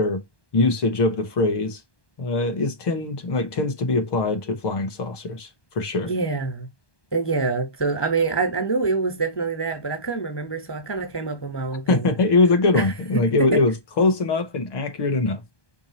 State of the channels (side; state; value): right; late; 1.2 ms